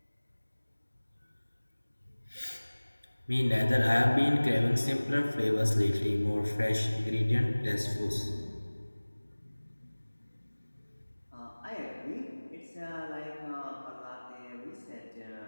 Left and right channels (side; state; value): both; inverted; correlation -1.00